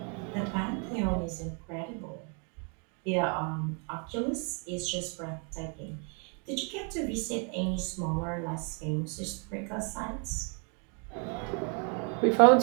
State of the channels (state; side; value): quieter; left; 38.6 dB